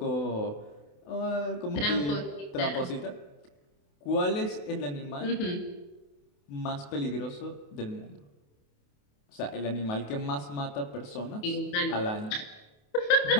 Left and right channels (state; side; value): late; right; 28 ms